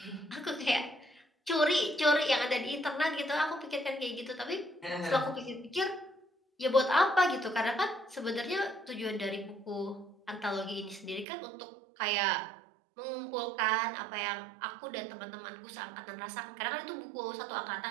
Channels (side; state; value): left; drops out; at 11.2 s